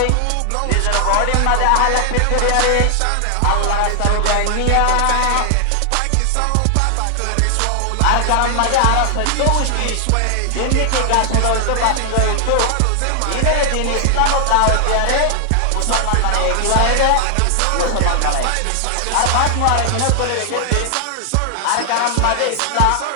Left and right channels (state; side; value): different; both; correlation 0.00